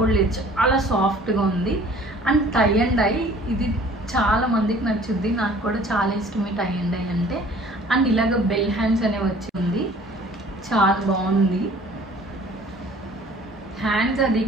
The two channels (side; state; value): both; normal; correlation 0.51